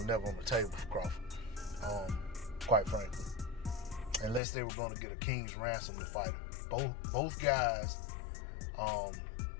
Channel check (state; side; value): drops out; right; at 4.4 s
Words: never on the table for Crawford, quite frankly. Unless they were going to get a king's ransom to fight him. Both guys